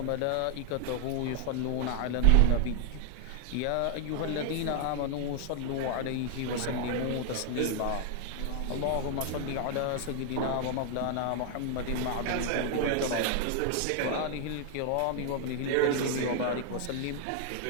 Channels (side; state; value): both; different; correlation 0.00